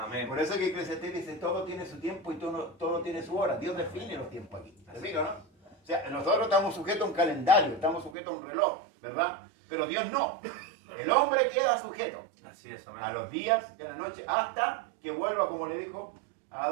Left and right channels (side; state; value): left; drops out; at 8.2 s